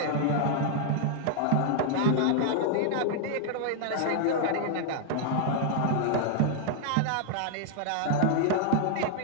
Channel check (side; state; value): both; different; correlation 0.00